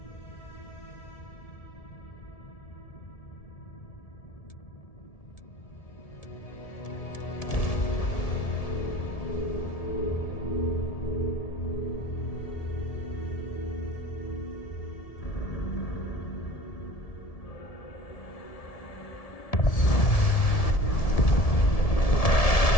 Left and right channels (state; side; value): late; right; 1.7 ms